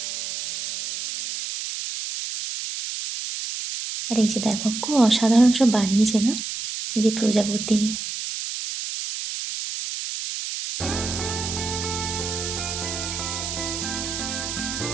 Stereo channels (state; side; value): noise; right; hiss, 5 dB below the sound